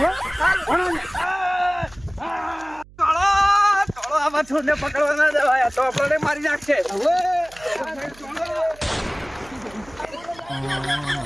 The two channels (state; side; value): noise; right; hum, 23 dB below the sound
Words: પકડવા ના દેવાય તો આપણને મારી નાખશે.